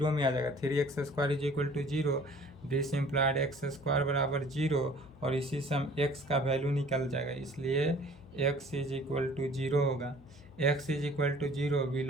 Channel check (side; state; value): left; noise; hum, 22 dB below the sound